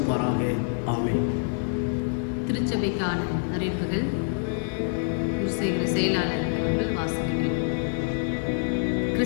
ஆமென். திருச்சபைக்கான அறிவிப்புகள் செயலாளர் அவர்கள் வாசிக்கிறேன்.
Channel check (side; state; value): right; silent; digital silence